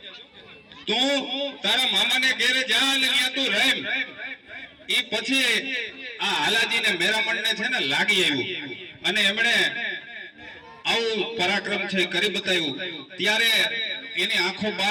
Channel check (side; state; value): both; identical; correlation 1.00